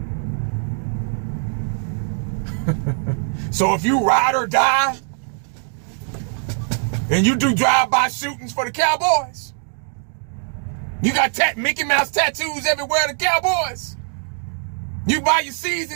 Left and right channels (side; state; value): left; silent; 62 dB below the other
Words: So if you ride or die, and you do drive-by shootings for the Cowboys, you got Mickey Mouse tattoos everywhere the Cowboys, you buy your